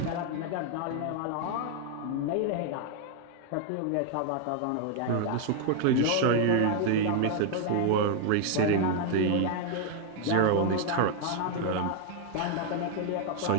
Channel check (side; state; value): both; different; correlation 0.00